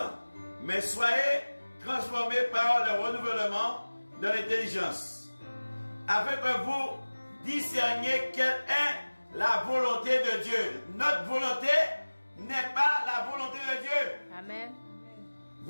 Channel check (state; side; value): inverted; both; correlation -1.00